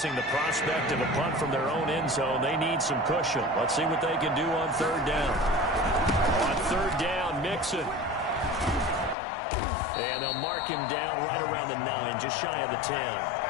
the prospect of a punt from their own end zone, they need some cushion. Let's see what they can do on 3rd down. On 3rd down, Mixon. And they'll mark him down right around the 9, just shy of the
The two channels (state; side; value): drops out; right; at 9.2 s